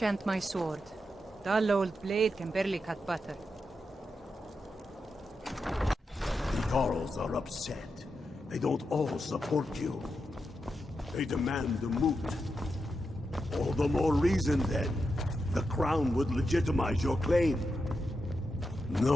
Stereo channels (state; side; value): normal; both; correlation 0.87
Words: my sword. Dull old blade can barely cut butter. The Jarls are upset. They don't all support you. They demand the moot. All the more reason, then. The crown would legitimize your claim.